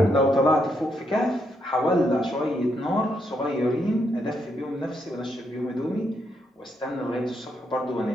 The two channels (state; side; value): normal; both; correlation 0.78